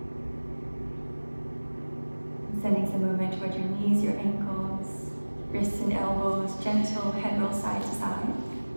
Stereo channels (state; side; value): inverted; both; correlation -1.00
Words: Sending some movement towards your knees, your ankles, wrists and elbows, gentle head roll side to side.